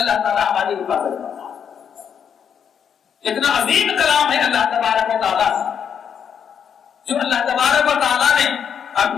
تعالیٰ ہماری حفاظت کرتا ہے۔ اتنا عظیم کلام ہے اللہ تبارک و تعالیٰ جو اللہ تبارک و تعالیٰ نے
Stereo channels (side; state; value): right; quieter; 7.8 dB